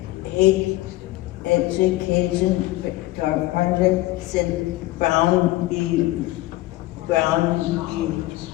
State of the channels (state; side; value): quieter; right; 17.7 dB